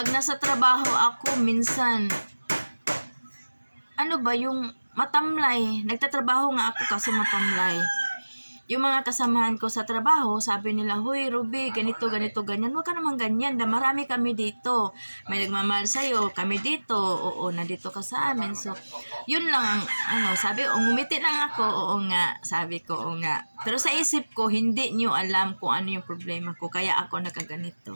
nasa trabaho ako, minsan, yung matamlay. Nagtatrabaho nga ako kasi matamlay. Yung mga kasamahan ko sa trabaho, sabi nila, "Hoy, Ruby, ganito, ganyan." Huwag ka naman ganyan. Marami kami dito. May nagmamahal sa'yo. Kami dito. Oo, nandito ka sa amin. So, yun lang ang, sabi, ngumiti lang ako. Oo nga. Sabi ko, oo nga. Pero sa isip ko, hindi nyo alam kung ano yung problema ko. Kaya ako nagkaganito.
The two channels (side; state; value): both; inverted; correlation -1.00